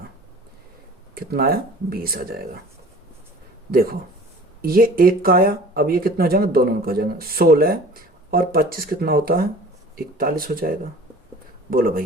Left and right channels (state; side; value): normal; both; correlation 0.45